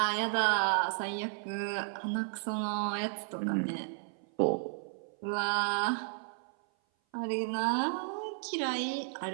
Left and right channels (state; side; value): silent; left; 56 dB below the other